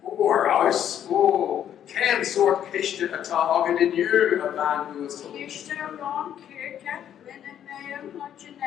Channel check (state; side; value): quieter; right; 10.0 dB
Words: Or ice. Oh, can sort kishta a tog in you a man who is Kishta Ron Kirka, Lynn Mayor,